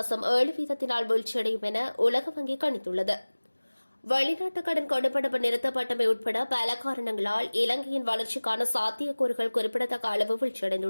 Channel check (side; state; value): both; inverted; correlation -1.00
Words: வீழ்ச்சியடையும் என உலக வங்கி கணித்துள்ளது. வெளிநாட்டு கடன் கொடுப்பனவு நிறுத்தப்பட்டமை உட்பட பல காரணங்களால் இலங்கையின் வளர்ச்சிக்கான சாத்தியக்கூறுகள் குறிப்பிடத்தக்க அளவு